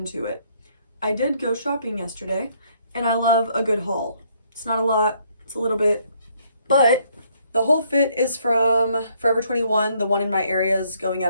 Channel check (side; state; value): both; inverted; correlation -0.68